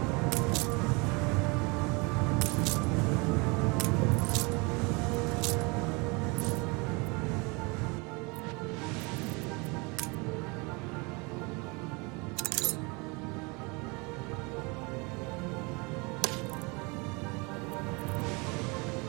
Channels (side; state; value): left; quieter; 28.4 dB